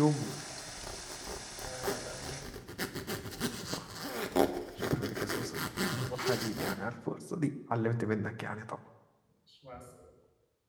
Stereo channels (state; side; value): identical; both; correlation 1.00